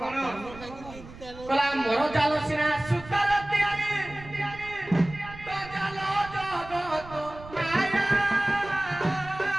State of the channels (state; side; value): noise; right; rumble, 17 dB below the sound